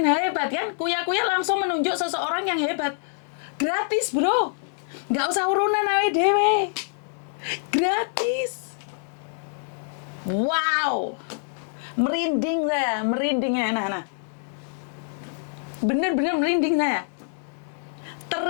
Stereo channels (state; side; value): silent; right; digital silence